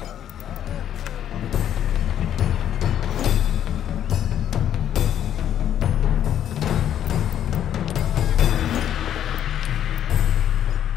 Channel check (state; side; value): quieter; right; 10.3 dB